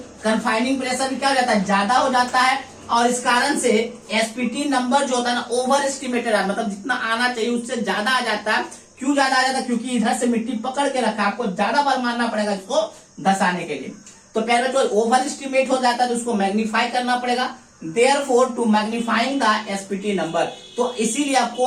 कन्फाइनिंग प्रेशर भी क्या हो जाता है, ज्यादा हो जाता है और इस कारण से एसपीटी नंबर जो होता है ना ओवर एस्टिमेटेड है, मतलब जितना आना चाहिए उससे ज्यादा आ जाता है। क्यों ज्यादा आ जाता है, क्योंकि इधर से मिट्टी पकड़ के रखा, आपको ज्यादा बार मारना पड़ेगा इसको धसाने के लिए। तो पहले जो ओवर एस्टिमेट हो जाता है तो उसको मैग्नीफाई करना पड़ेगा। Therefore to magnifying the SPT number, तो इसीलिए आपको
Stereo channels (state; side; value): identical; both; correlation 1.00